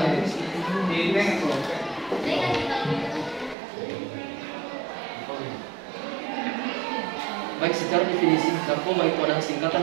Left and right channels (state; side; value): drops out; left; at 3.6 s